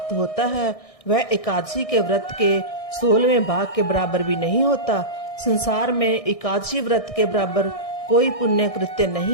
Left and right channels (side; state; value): right; late; 1.6 ms